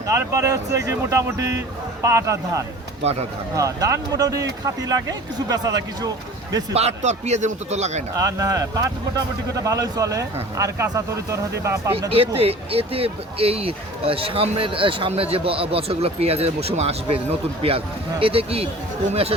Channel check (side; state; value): both; normal; correlation 0.42